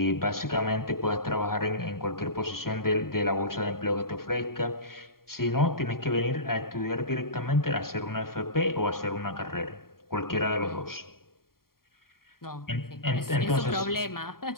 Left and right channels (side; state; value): right; late; 0.93 ms